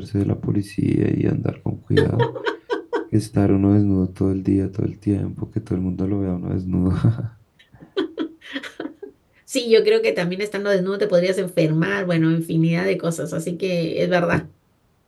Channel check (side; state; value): both; identical; correlation 1.00